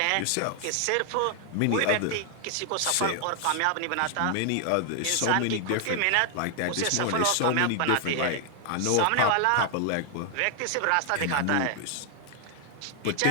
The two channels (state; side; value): different; both; correlation 0.00